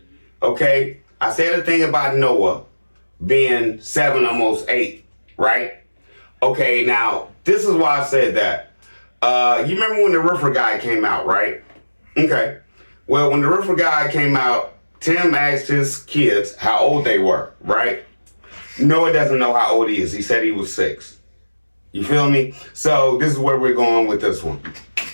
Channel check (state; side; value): inverted; both; correlation -1.00